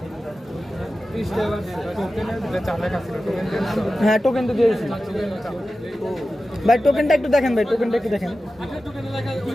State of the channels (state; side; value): normal; both; correlation 0.94